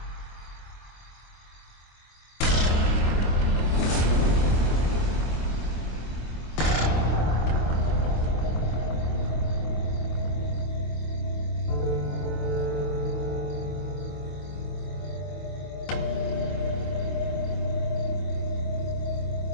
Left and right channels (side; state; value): right; late; 25 ms